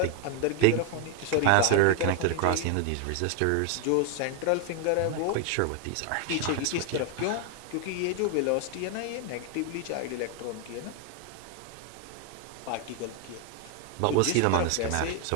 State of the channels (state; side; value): different; both; correlation 0.00